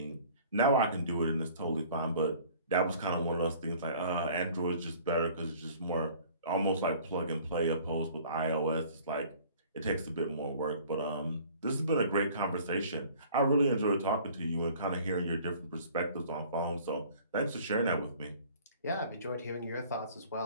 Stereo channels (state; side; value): inverted; both; correlation -0.50